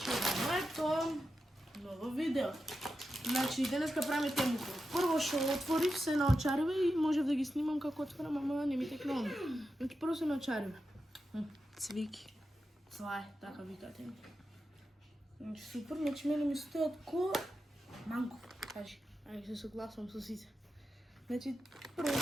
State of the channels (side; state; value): both; normal; correlation 0.90